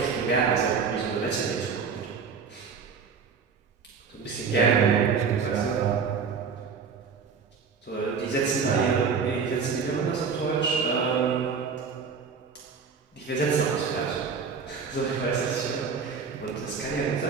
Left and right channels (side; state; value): left; quieter; 5.8 dB